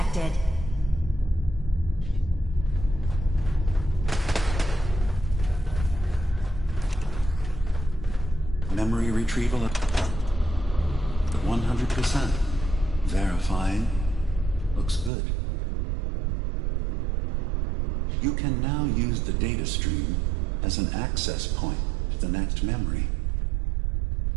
Memory retrieval at 100%. Verifying. Looks good. You can now use the data stream as an access point to the next memory.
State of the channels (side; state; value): left; drops out; at 15.1 s